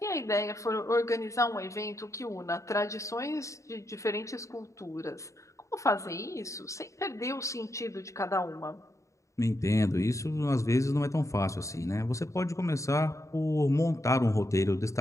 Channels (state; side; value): late; right; 0.15 ms